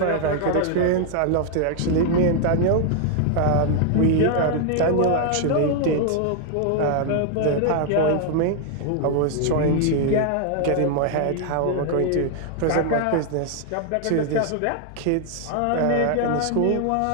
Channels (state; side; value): different; both; correlation 0.00